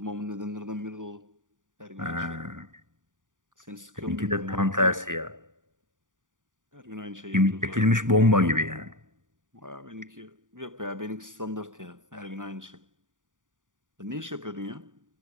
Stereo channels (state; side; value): late; left; 0.88 ms